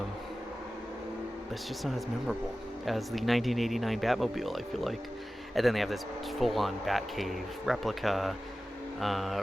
it's just not as memorable as the 1989 Batmobile, I feel like. And then they have this full-on Batcave replica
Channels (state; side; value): normal; both; correlation 0.95